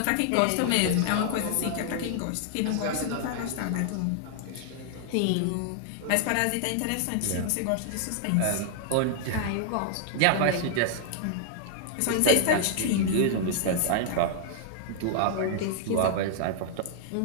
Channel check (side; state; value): both; different; correlation 0.00